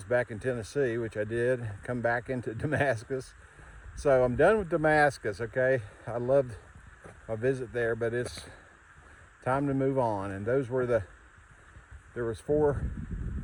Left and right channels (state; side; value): identical; both; correlation 1.00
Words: back in Tennessee, which I did, come back into Damascus. So I'm done with Damascus, okay? I loved my visit there, but it's time to move on. And those were there was 4